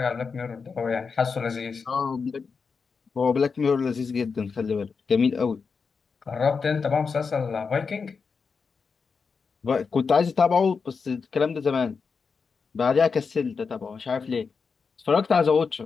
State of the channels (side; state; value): right; quieter; 5.3 dB